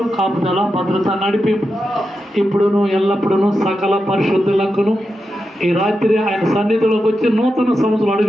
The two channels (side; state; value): both; normal; correlation 0.89